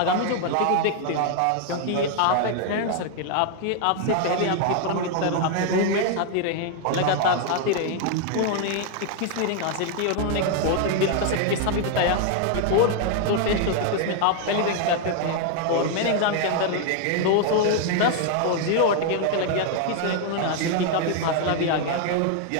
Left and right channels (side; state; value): both; different; correlation 0.00